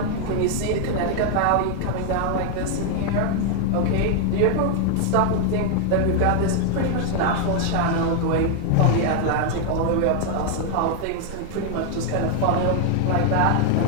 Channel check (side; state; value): both; different; correlation 0.00